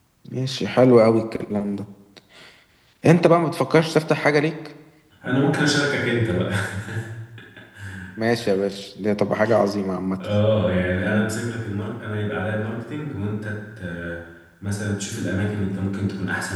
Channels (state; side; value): identical; both; correlation 1.00